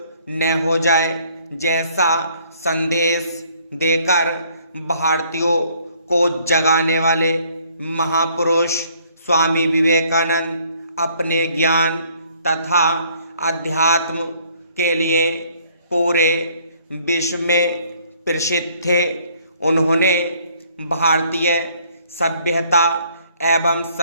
न हो जाए जैसा संदेश देकर भारतीयों को जगाने वाले महापुरुष स्वामी विवेकानंद अपने ज्ञान तथा अध्यात्म के लिए पूरे विश्व में प्रसिद्ध थे। उन्होंने भारतीय सभ्यता एवं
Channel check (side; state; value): both; inverted; correlation -0.62